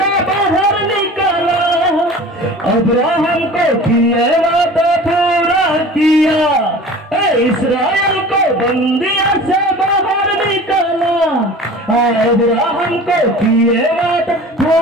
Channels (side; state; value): both; normal; correlation 0.40